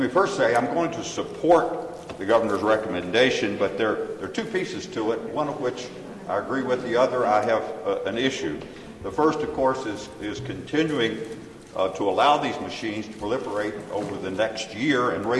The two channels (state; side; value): identical; both; correlation 1.00